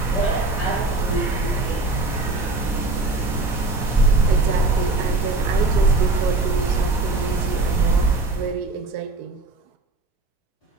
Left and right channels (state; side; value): quieter; left; 3.2 dB